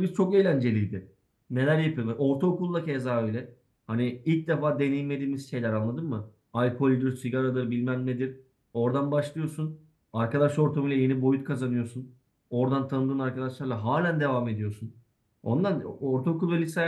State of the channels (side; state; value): both; identical; correlation 1.00